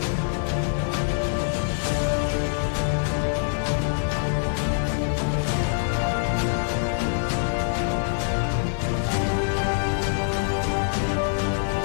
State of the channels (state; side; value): silent; right; 55 dB below the other